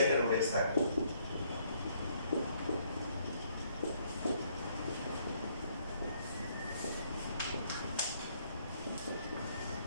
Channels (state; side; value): inverted; both; correlation -0.68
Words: একটা রুট এক্স থাকে